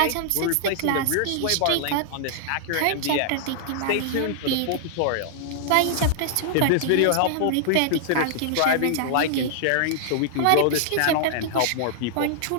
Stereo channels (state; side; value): different; both; correlation -0.01